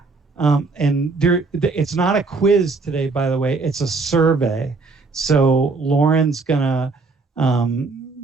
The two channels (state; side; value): quieter; left; 3.9 dB